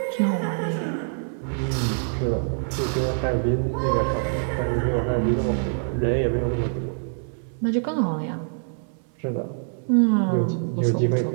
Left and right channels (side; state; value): left; silent; 62 dB below the other